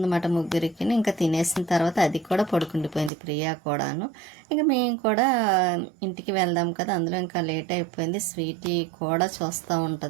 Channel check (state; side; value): drops out; left; at 3.1 s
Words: ముగ్గురికి. ఇంకా తినేసిన తర్వాత అది కూడా పడుకుండిపోయింది ప్రియా కూడాను. ఇంకా మేము కూడా ఇంటికి వెళ్దాం కదా, అందులో ఇంకా లేట్ అయిపోయింది. స్వీటీ కూడా చూస్తూ